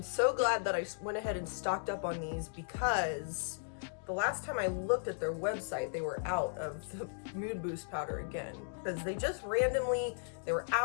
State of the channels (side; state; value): right; silent; digital silence